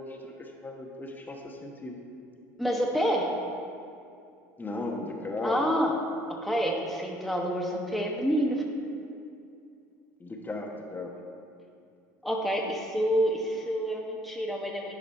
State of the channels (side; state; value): both; normal; correlation 0.68